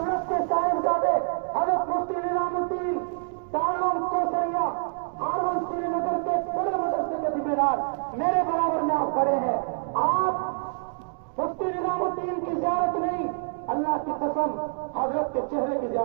کے صاحبزادے حضرت مفتی نظام الدین دارالعلوم کوثریہ ہارون سری نگر کے بڑے مدرسے کے ذمہ میرے برابر میں آپ کھڑے ہیں. آپ مفتی نظام الدین کی زیارت نہیں، اللہ کی قسم حضرت کے چہرے کی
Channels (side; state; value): left; silent; digital silence